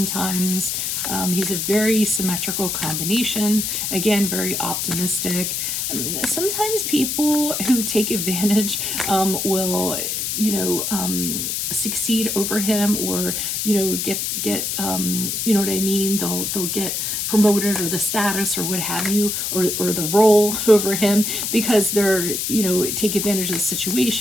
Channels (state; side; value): noise; left; hiss, 1 dB below the sound